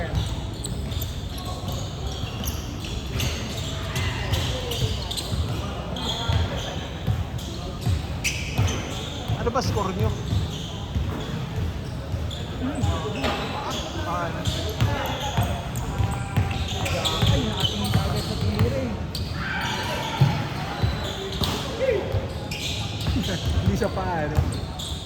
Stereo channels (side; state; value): both; identical; correlation 1.00